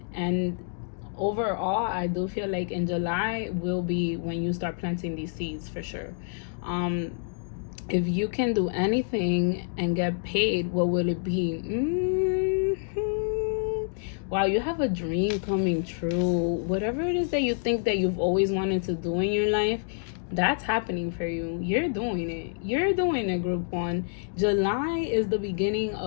And overall, I do feel like in July will be when you start planting these seeds, for sure. If you can do anything and get paid, what will it be? Wow, you have a dream coming true. Whatever it is that you think that you've always wanted to do in your life, that's happening for you. You're doing it. You're doing it, group one. July is the beginning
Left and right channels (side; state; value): right; silent; digital silence